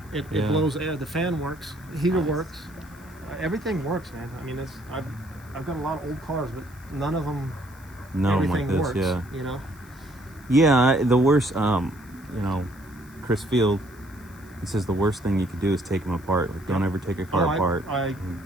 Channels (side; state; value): right; noise; hiss, 27 dB below the sound